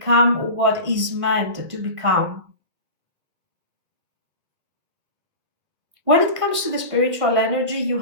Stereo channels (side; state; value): left; late; 1.8 ms